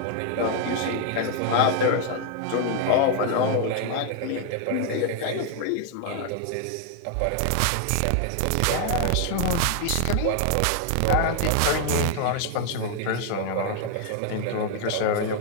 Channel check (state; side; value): different; both; correlation 0.00